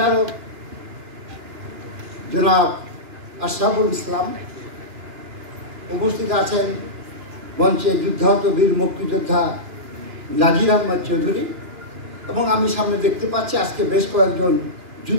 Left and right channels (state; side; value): late; left; 2.9 ms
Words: জনাব আশরাফুল ইসলাম। উপস্থিত আছেন মঞ্চে যুদ্ধাহত বীর মুক্তিযোদ্ধা নাজির আহমদ চৌধুরী এবং আমি সামনে দেখতে পাচ্ছি আজকে বেশ কয়েকজন